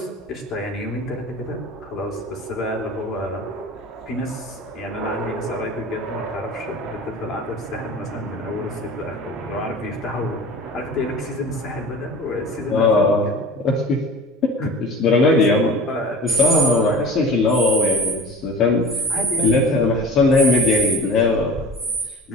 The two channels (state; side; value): normal; both; correlation 0.39